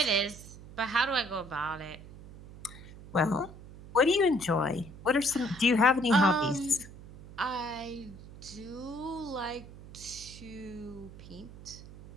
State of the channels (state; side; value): noise; right; hum, 16 dB below the sound